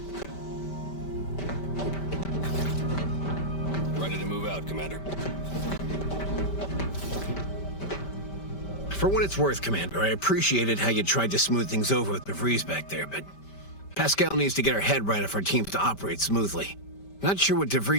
Ready to move out, Commander. For what it's worth, Commander, I appreciated how you tried to smooth things over with DeVries back there, but Pascal needs to get her head right if our team's to operate smoothly. Not sure what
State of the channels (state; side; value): late; right; 5.1 ms